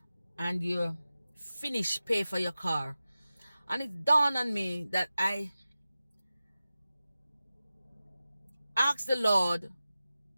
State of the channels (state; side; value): inverted; both; correlation -0.95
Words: and you finish pay for your car, and it dawned on me that I asked the Lord